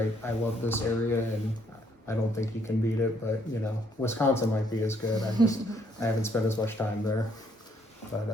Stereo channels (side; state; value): both; normal; correlation 0.70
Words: I love this area, and I don't think you can beat it. But you know, Wisconsin might be as good. I haven't spent as much time there. But